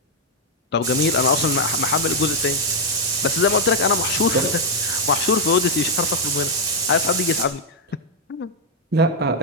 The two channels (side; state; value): both; normal; correlation -0.02